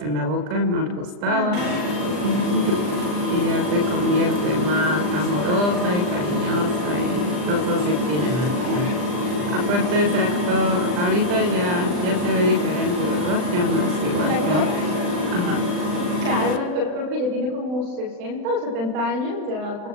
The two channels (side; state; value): left; late; 40 ms